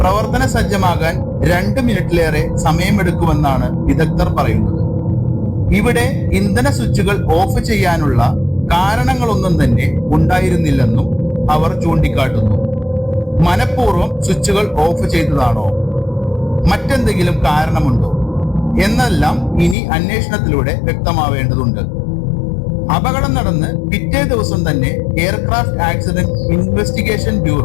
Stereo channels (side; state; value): right; drops out; at 19.8 s